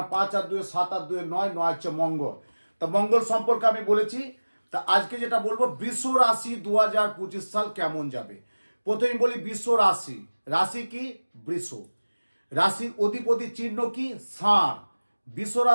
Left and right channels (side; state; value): both; inverted; correlation -1.00